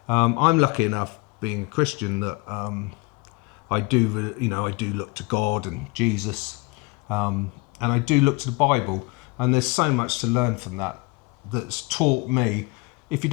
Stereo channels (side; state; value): right; quieter; 25.5 dB